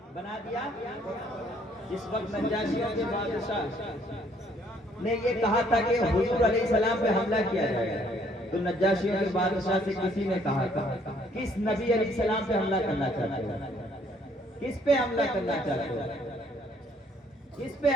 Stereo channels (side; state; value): both; normal; correlation 0.64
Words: بنا دیا جس وقت نجاشیوں کے بادشاہ نے یہ کہا تھا کہ حضور علیہ السلام پہ حملہ کیا جائے تو نجاشیوں کے بادشاہ سے کسی نے کہا تھا کس نبی علیہ السلام پہ حملہ کرنا چاہتے ہو کس پہ حملہ کرنا چاہتے ہو کس پہ